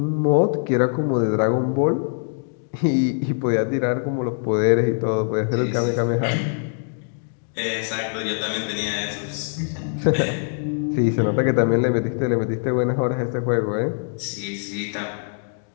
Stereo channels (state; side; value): silent; right; digital silence